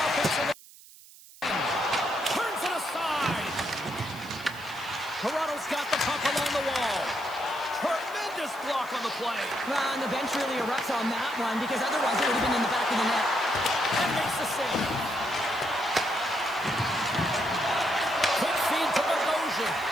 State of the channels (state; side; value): noise; right; hiss, 21 dB below the sound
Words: Turns it aside. Toronto's got the puck along the wall. Tremendous block on the play. Well, and the bench really erupts on that one because otherwise it would have been in the back of the net. And makes the save. Quick feed to Bogosian.